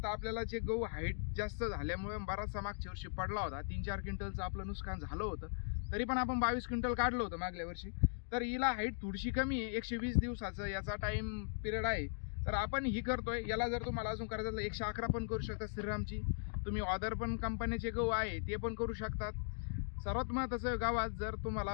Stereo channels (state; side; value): silent; right; digital silence